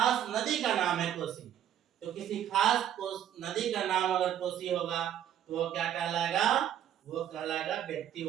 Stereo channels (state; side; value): quieter; left; 10.5 dB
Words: नदी का नाम है कोसी। तो किसी खास नदी का नाम अगर कोसी होगा तो वो क्या कहलाएगा, वो कहलाएगा